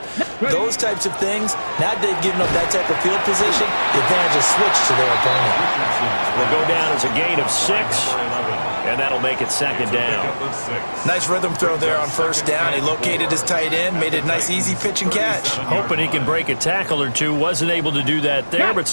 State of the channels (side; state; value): both; inverted; correlation -1.00